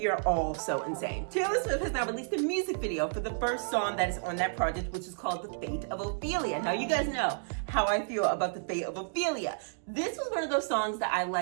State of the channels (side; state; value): left; silent; digital silence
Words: are all so insane. Taylor Swift has now released a music video for the first song that is on that project, which is called The Fate of Ophelia. Now, you guys know how I feel about The Fate of Ophelia. This was one of those songs that I